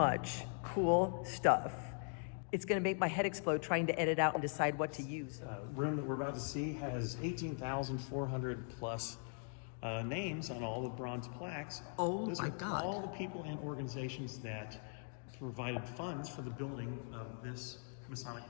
cool stuff. It's going to make my head explode trying to edit out and decide what to use. Room that we're about to see has 18,400 plus names on all the bronze plaques. Oh Those my are God. all the people and organizations that provided funds for the building of this Masonic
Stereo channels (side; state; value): right; silent; 51 dB below the other